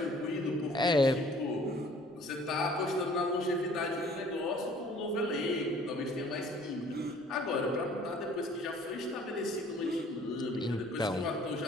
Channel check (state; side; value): normal; both; correlation 0.54